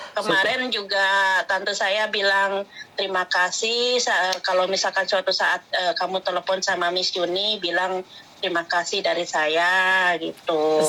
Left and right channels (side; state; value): both; identical; correlation 1.00